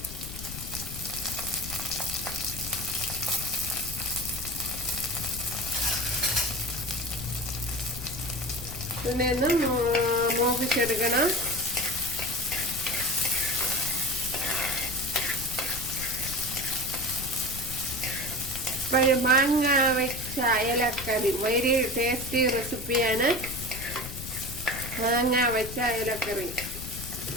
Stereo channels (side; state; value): left; noise; rumble, 10 dB below the sound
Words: ഇതിനെ ഒന്ന് മൂപ്പിച്ചെടുക്കണം. മാങ്ങ വെച്ച അയലക്കറി വെരി ടേസ്റ്റി റെസിപ്പിയാണ്. മാങ്ങ വെച്ച അയലക്കറി